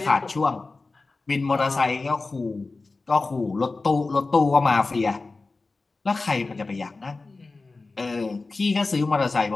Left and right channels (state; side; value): quieter; right; 3.7 dB